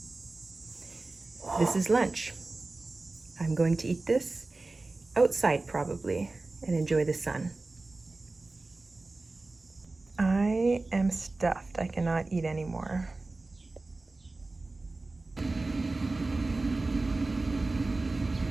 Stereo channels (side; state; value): left; quieter; 3.3 dB